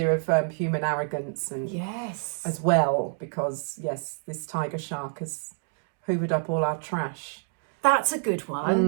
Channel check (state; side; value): silent; left; 60 dB below the other